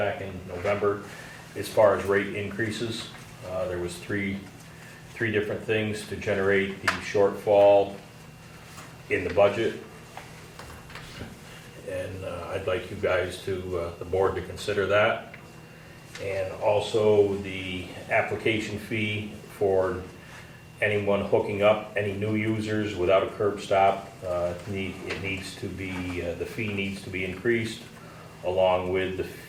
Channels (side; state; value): both; identical; correlation 1.00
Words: in November as far as rate increases. There was three different things to generate the shortfall in the budget. And I'd like you guys the board to consider that. And also the application fee for anyone hooking up, any new users without a curb stop, the fee needs to be increased, along with the